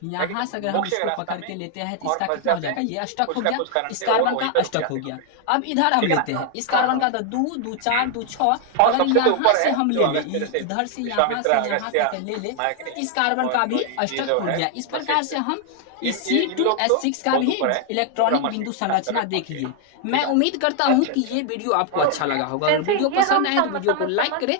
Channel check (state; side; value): different; both; correlation 0.00